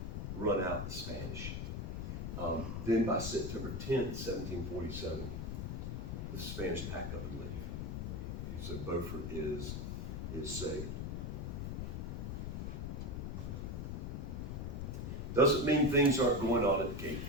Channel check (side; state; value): left; noise; rumble, 3 dB below the sound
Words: run out the Spanish. Then by September 10th, 1747, the Spanish pack up and leave. And so Beaufort is saved. Doesn't mean things aren't going on at the Cape